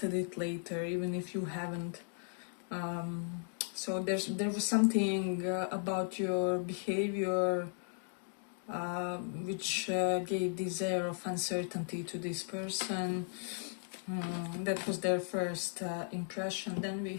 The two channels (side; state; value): right; silent; 54 dB below the other